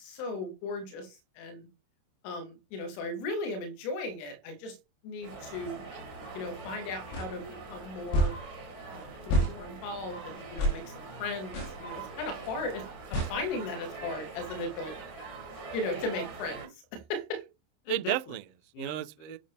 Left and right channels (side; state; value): right; late; 26 ms